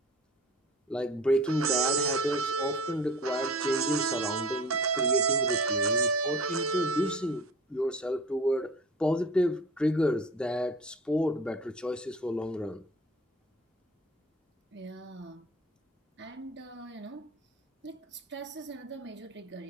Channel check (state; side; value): normal; both; correlation 0.41